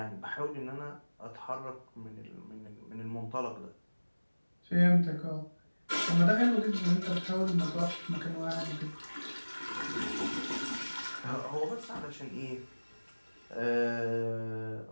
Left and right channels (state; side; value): inverted; both; correlation -1.00